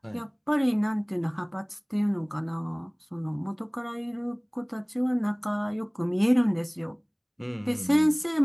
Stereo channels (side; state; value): both; identical; correlation 1.00